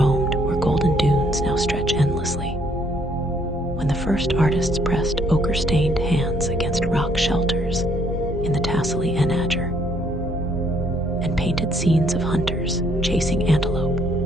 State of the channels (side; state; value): both; normal; correlation 0.67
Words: where golden dunes now stretch endlessly, when the first artists pressed ochre-stained hands against rock shelters in the Tassili Enager, and painted scenes of hunters chasing antelope